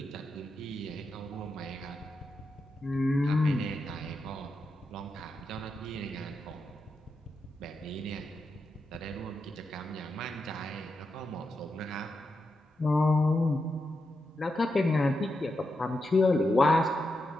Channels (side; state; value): both; normal; correlation 0.86